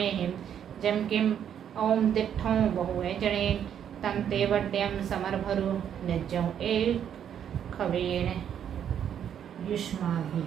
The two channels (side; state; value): left; quieter; 9.1 dB